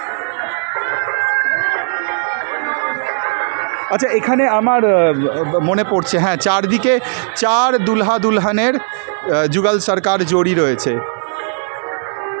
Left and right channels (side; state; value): left; silent; digital silence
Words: আচ্ছা, এখানে আমার মনে পড়ছে, হ্যাঁ, চারদিকে 4 দুলহা দুলহানের जुगल सरकार जोड़ी रयेछे।